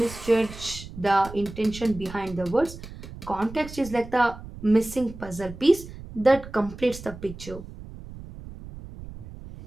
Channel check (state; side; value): noise; right; rumble, 14 dB below the sound